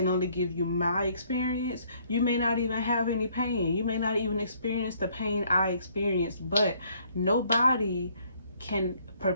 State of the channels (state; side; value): inverted; both; correlation -0.64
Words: only give you my experience. You may not even have any pain. You may not even experience the pain I experienced, but nobody can